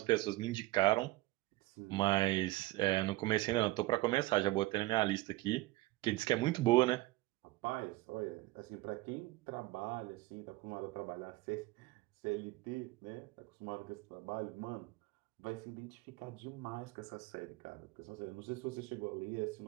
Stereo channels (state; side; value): quieter; left; 19.5 dB